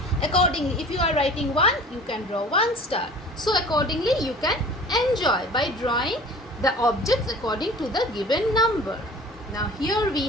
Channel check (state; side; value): normal; both; correlation 0.44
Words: accordingly, if you are writing 1, you can draw 1 star. So accordingly, you can enjoy by drawing the objects according to the given number. Now here we